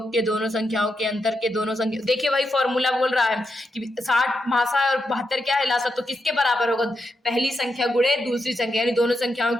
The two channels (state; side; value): normal; both; correlation 0.85